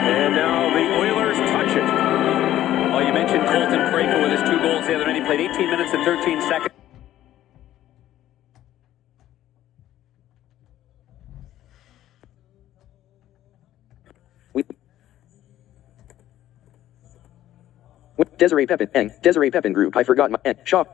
now the Oilers touch it. Well, you mentioned Colton Parayko with his 2 goals the other night. He played 18 minutes and 13 seconds. Desiree Pepin group. I forgot my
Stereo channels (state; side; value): quieter; right; 13.1 dB